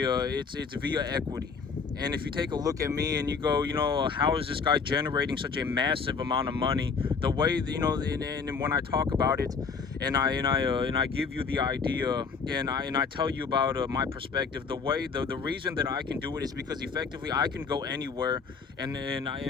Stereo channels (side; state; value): right; quieter; 5.3 dB